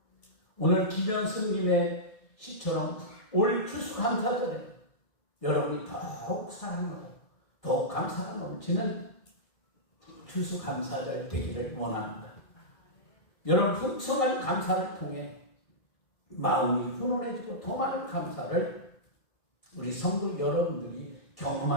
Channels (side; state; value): right; late; 1.6 ms